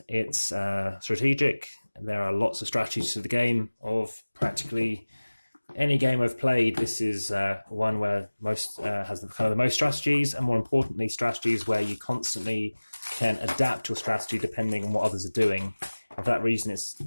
it's strategic. There are lots of strategies to the game. Of practically any game I've played, this is one where most has the most strategies, and more importantly, strategies where you constantly can adapt your strategy depending on what others are doing. And for that reason, it's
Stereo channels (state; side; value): inverted; both; correlation -1.00